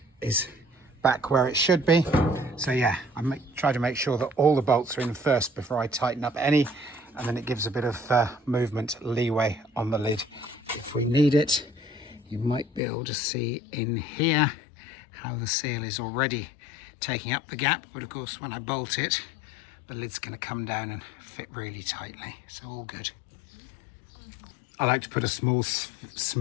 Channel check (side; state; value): right; drops out; at 12.8 s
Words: is back where it should be. So yeah, try to make sure that all the bolts are in first before I tighten up any, and then it gives a bit of movement leeway on the lid if we need it. You might be able to see in here how the seal is already taking up the gap, but of course when I bolt it, the lid's going to come down and fit really tightly, so all good. I like to put a small